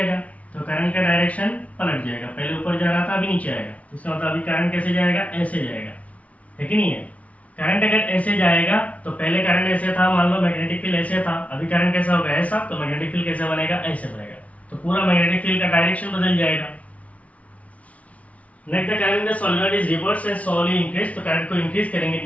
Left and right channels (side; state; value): right; late; 0.066 ms